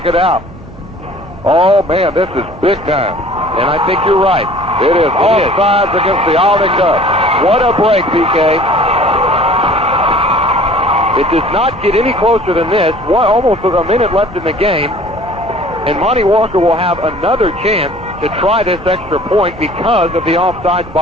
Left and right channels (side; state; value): right; noise; hum, 24 dB below the sound